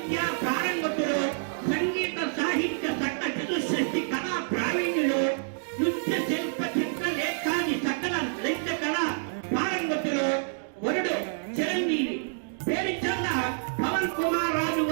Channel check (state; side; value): silent; left; digital silence